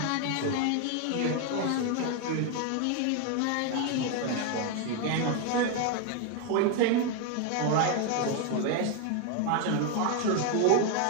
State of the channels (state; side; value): different; both; correlation 0.01